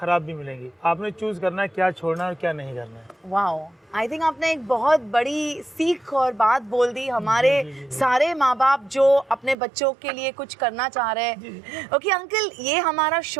भी मिलेंगी. आपने चूज़ करना है क्या छोड़ना है और क्या नहीं करना है. वाओ, आई थिंक आपने एक बहुत बड़ी सीख और बात बोल दी हमारे सारे माँ बाप जो अपने बच्चों के लिए कुछ करना चाह रहे हैं. ओके अंकल, ये हमारा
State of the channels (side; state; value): left; drops out; at 9.6 s